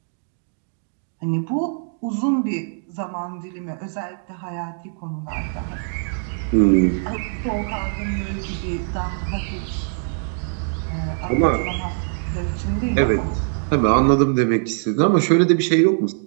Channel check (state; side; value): silent; left; digital silence